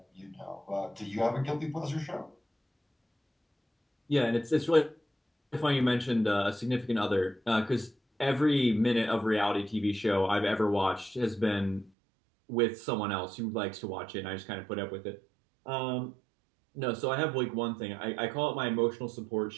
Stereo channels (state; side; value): drops out; left; at 11.9 s